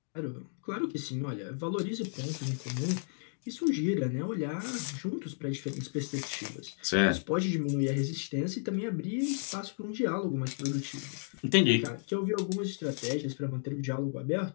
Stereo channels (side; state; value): right; silent; digital silence